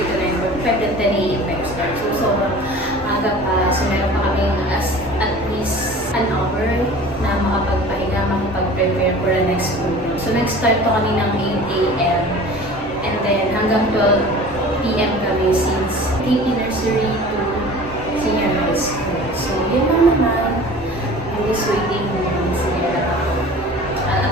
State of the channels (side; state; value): both; normal; correlation 0.42